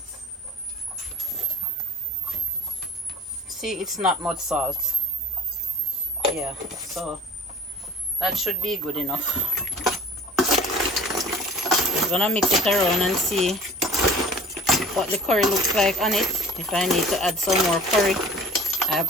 See, it's not much salt. Yeah, so that should be good enough. I'm gonna mix it around and see what the curry looks like on it, if I need to add some more curry. I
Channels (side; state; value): both; normal; correlation 0.46